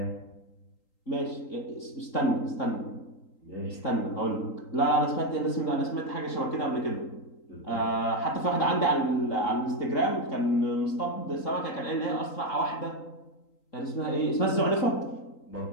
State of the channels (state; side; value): late; right; 3.8 ms